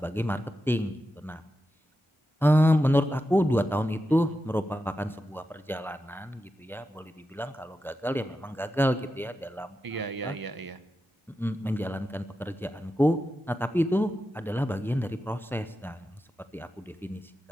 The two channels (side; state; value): both; normal; correlation 0.89